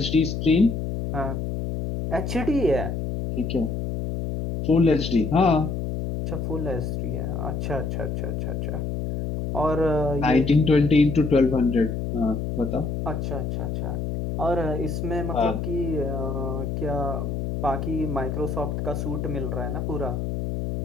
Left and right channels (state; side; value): noise; left; hum, 3 dB below the sound